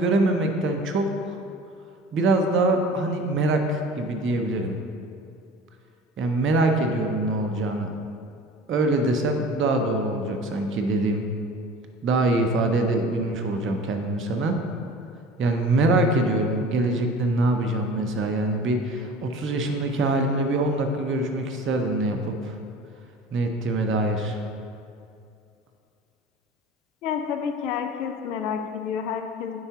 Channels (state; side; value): normal; both; correlation 0.41